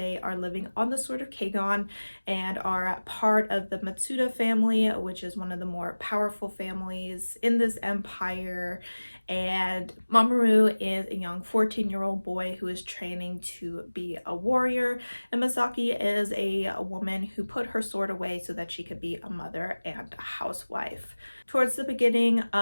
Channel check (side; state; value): both; inverted; correlation -1.00